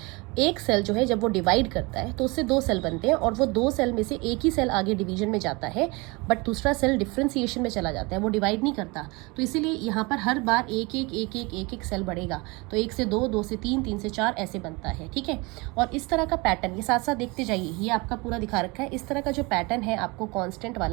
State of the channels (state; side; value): quieter; left; 26.2 dB